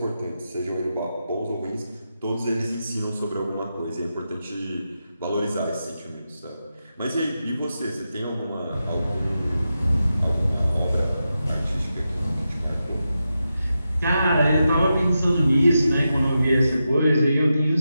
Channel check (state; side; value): inverted; both; correlation -0.89